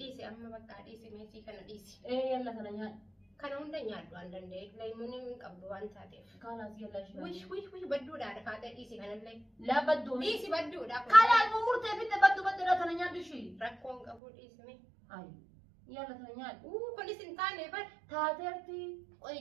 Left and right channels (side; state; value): left; drops out; at 14.2 s